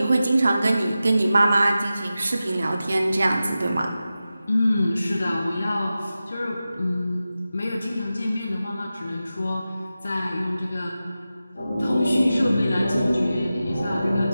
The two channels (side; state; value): both; inverted; correlation -0.93